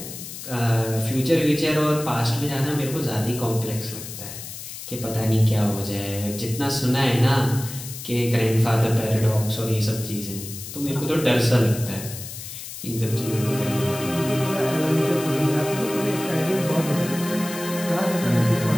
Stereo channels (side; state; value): left; noise; hiss, 11 dB below the sound